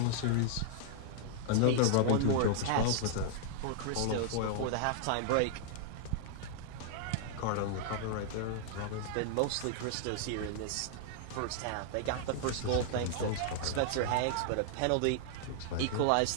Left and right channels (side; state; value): both; different; correlation 0.00